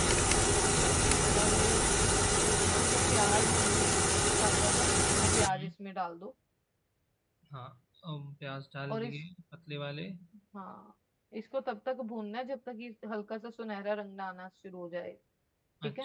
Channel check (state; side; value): identical; both; correlation 1.00